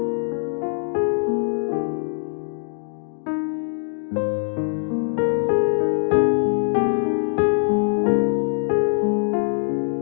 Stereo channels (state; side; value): silent; right; digital silence